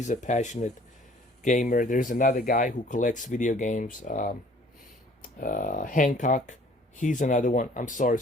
a passionate gamer. There's another guy who collects video games. Hancock, he's another one. I'm sorry.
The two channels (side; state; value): both; normal; correlation 0.54